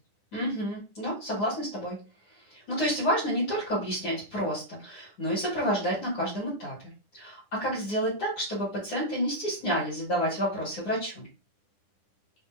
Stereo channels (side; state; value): right; late; 9.9 ms